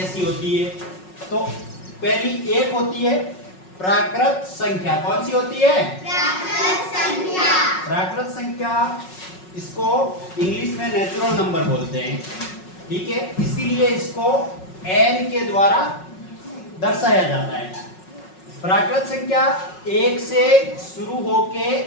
होती है? तो पहली एक होती है प्राकृत संख्या। कौन सी होती है? प्राकृत संख्या। प्राकृत संख्या, इसको इंग्लिश में नेचुरल नंबर बोलते हैं, ठीक है। इसीलिए इसको n के द्वारा दर्शाया जाता है। प्राकृत संख्या 1 से शुरू होके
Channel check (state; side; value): late; right; 5.4 ms